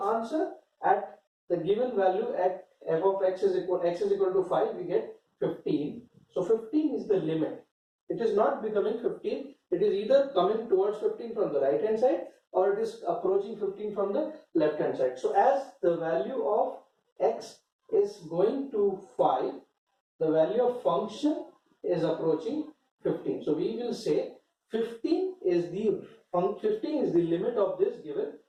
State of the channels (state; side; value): identical; both; correlation 1.00